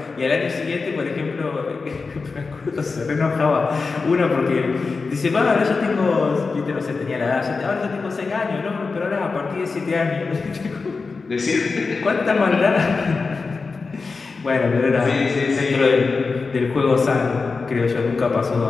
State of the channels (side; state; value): right; quieter; 4.4 dB